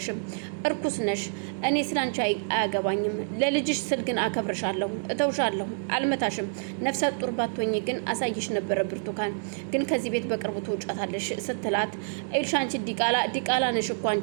እርኩስ ነሽ። እኔ ስላንቺ አያገባኝም። ለልጅሽ ስል ግን አከብርሻለሁ፣ እተውሻለሁ፣ አልመታሽም። ነፍሰ ጡር ባትሆኚ ግን አሳይሽ ነበረ ብርቱካን፣ ግን ከዚህ ቤት በቅርቡ ትውጫታለሽ ስትላት እዩልሽ አንቺ ዲቃላ ነሽ እኮ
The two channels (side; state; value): left; silent; 60 dB below the other